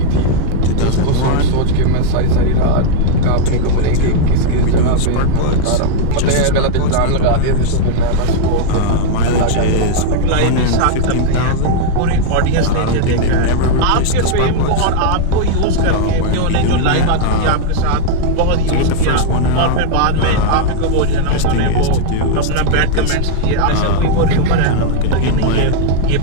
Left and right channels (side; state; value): both; different; correlation 0.00